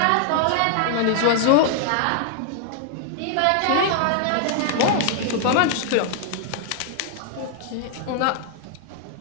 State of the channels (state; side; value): different; both; correlation 0.00